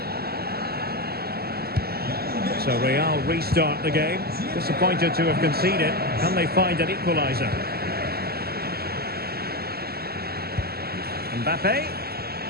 So Real restart the game. Disappointed to have conceded. Can they find an equaliser? Mbappe.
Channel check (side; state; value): left; late; 0.45 ms